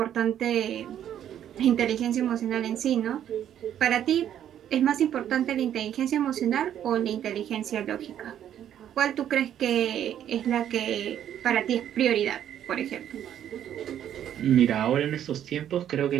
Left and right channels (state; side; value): quieter; left; 10.4 dB